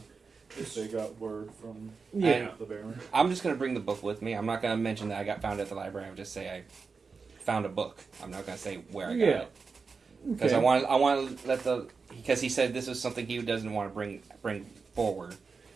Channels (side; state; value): left; quieter; 4.9 dB